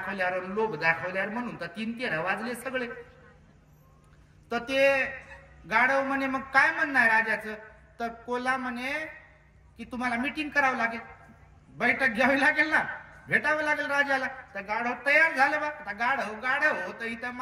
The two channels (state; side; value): identical; both; correlation 1.00